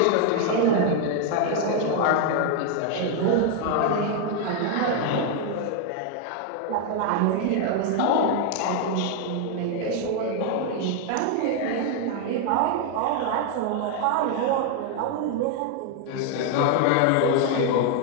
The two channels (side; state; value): both; different; correlation 0.01